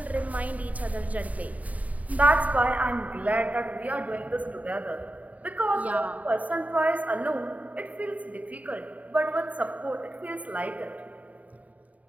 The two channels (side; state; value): left; late; 0.071 ms